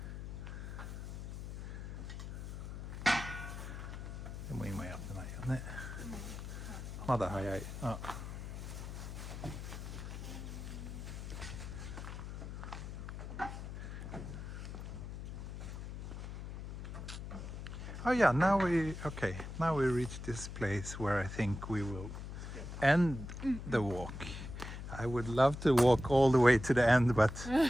でも今やってないよね。まだ早い。Oh yeah, now we reach this place where I think we will end the walk. I would love to walk all the way to the end, but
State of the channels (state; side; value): noise; left; hum, 8 dB below the sound